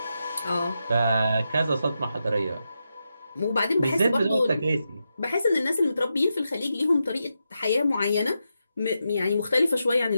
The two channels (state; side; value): inverted; both; correlation -0.87